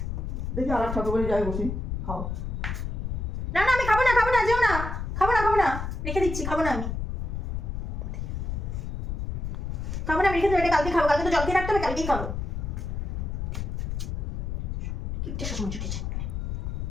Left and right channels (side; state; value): left; noise; rumble, 3 dB below the sound